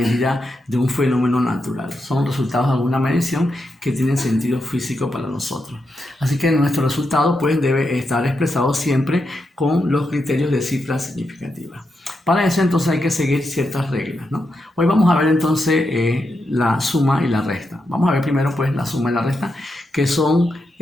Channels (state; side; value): normal; both; correlation 0.85